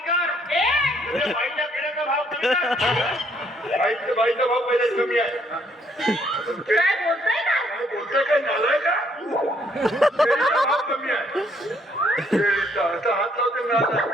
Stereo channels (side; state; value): both; normal; correlation 0.68